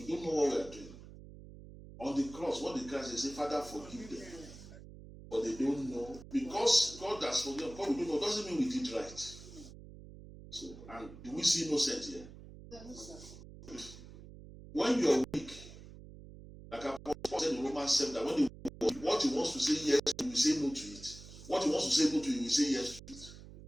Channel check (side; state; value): right; noise; hum, 16 dB below the sound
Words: don't know what we are doing. On the cross, what the Christ say, Father, forgive them. But they don't know. Because God has forgiven, God we don't know, doesn't mean we did right. So, and do we see innocent here? When you are weak, like Apostle said in Romans 7, that when they what he wants to say yes, he will say no to it. What he wants to say no to, he will say yes to it.